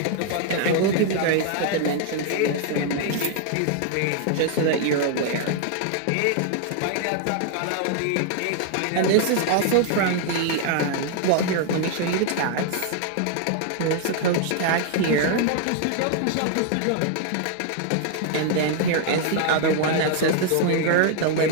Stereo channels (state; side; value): different; both; correlation 0.00